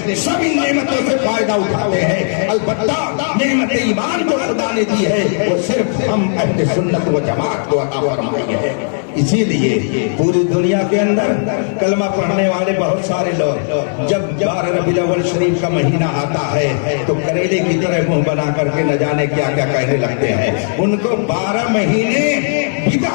سب ان نعمتوں سے فائدہ اٹھاتے ہیں. البتہ نعمت ایمان جو خدا نے دی ہے وہ صرف ہم اہل سنت و جماعت کو عطا فرمائی ہے. اسی لیے پوری دنیا کے اندر کلمہ پڑھنے والے بہت سارے لوگ جب 12 ربیع الاول شریف کا مہینہ آتا ہے تو کریلے کی طرح منہ بنا کر کے نہ جانے کیا کیا کہنے لگتے ہیں. ان کو 12 مہینے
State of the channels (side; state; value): right; silent; digital silence